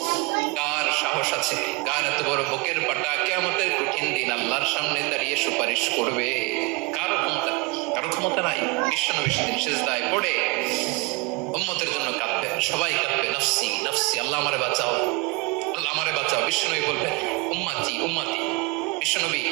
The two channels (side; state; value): left; quieter; 26.0 dB